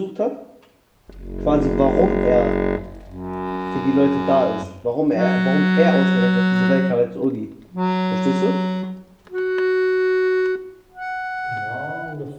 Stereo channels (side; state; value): both; identical; correlation 1.00